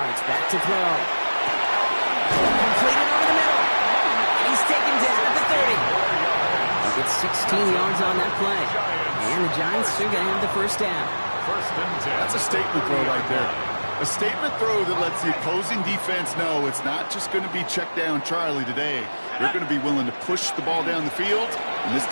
back to throw. Completed over the middle. He's taken down at the 30. He gets 16 yards on that play. And the Giants are going to have the first down. First and 10. That's a statement throw right there. A statement throw that lets the opposing defense know it's not just going to be check down Charlie today. They're going to be willing to push the ball down the field, and this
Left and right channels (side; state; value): both; inverted; correlation -1.00